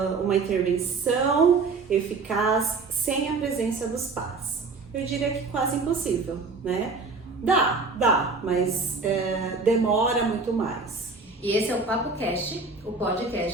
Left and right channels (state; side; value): quieter; left; 4.2 dB